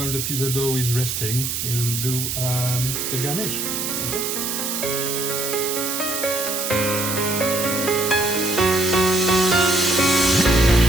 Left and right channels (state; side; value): noise; right; hiss, 2 dB below the sound